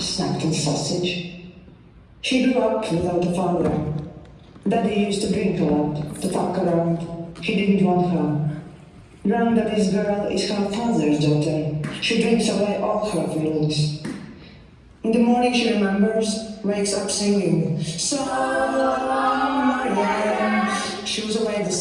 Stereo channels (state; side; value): identical; both; correlation 1.00